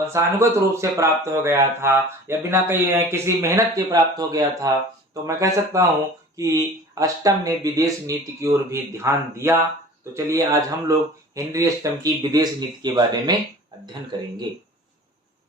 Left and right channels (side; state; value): both; normal; correlation 0.42